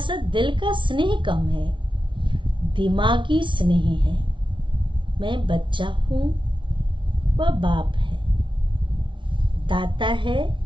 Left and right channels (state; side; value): late; left; 0.24 ms